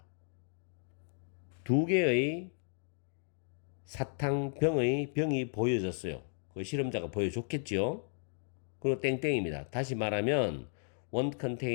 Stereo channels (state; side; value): silent; right; 55 dB below the other